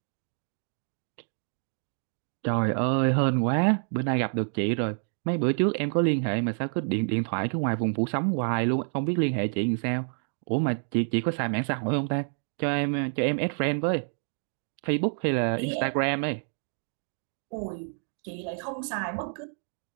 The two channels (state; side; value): silent; left; 59 dB below the other